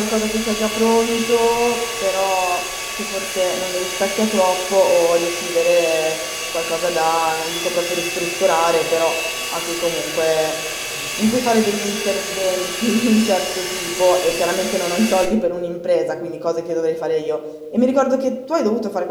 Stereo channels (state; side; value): identical; both; correlation 1.00